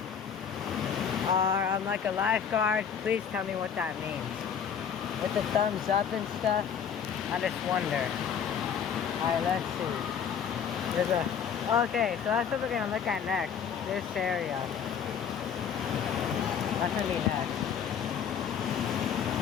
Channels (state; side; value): quieter; right; 7.7 dB